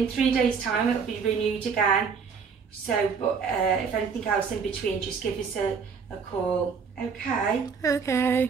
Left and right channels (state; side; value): quieter; left; 5.8 dB